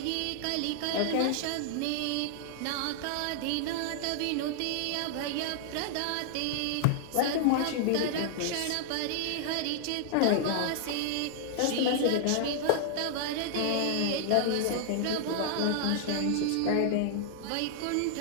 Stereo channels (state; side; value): different; both; correlation -0.01